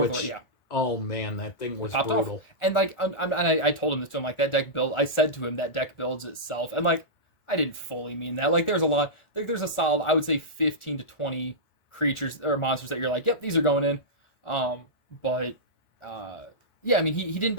oh man, that thing was brutal. Off. And like I told him this to him, like, that deck build, I said to him that deck builds itself, and like I didn't fully mean that. Like, there's a solid, I would say 15 to 20 creatures or monsters that you're like, yep, these are going in. But yeah, I mean, he didn't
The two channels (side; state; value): right; late; 1.4 ms